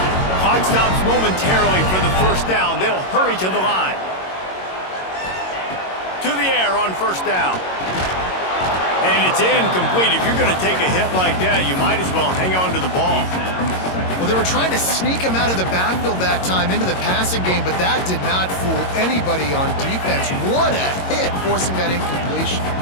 Clock stops momentarily for the first down. They'll hurry to the line. To the air on first down. And it's incomplete. If you're going to take a hit like that, you might as well hang on to the ball. Well, they were trying to sneak him out of the backfield that time into the passing game, but that did not fool anybody on defense. What a hit, forcing that incompletion.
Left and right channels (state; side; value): late; right; 22 ms